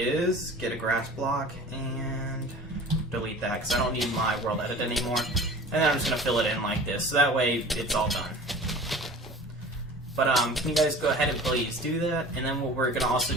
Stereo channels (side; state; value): both; normal; correlation 0.41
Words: get a grass block and delete that, because I don't need my world edit anymore. And then I'm just going to fill it in like this, so that way it's all done. But can you guys go ahead and please do that? And then what we're going to also